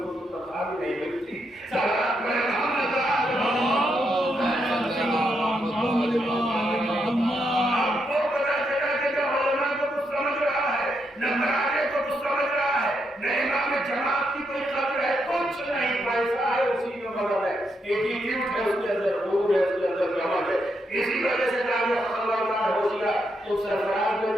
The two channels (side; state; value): both; normal; correlation 0.80